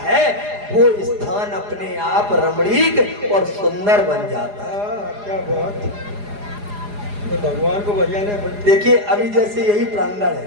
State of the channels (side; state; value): left; late; 4.9 ms